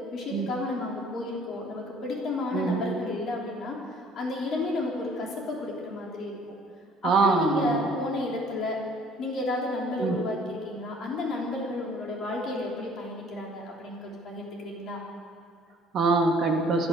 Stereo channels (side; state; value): both; normal; correlation 0.55